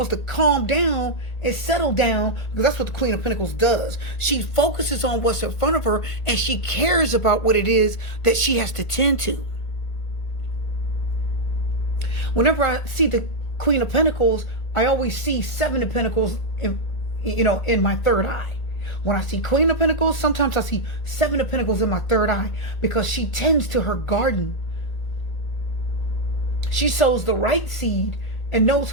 to calm down and settle down, because that's what the Queen of Pentacles does. She focuses on what's in front of her and she cares about what it is that she has to tend to. Whenever I see the Queen of Pentacles, I always see Seven of Pentacles in my third eye. When I see Queen of Pentacles, sometimes I see Seven of Pentacles in my third eye, because she tends to her garden. She sows the right seed and knows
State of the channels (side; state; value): right; late; 1.8 ms